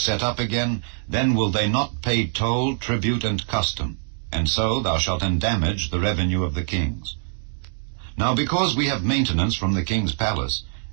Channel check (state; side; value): silent; left; digital silence